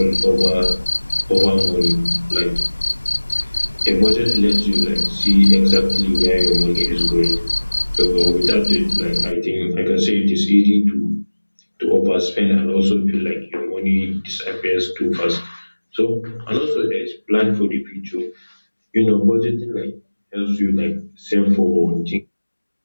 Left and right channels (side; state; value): both; inverted; correlation -1.00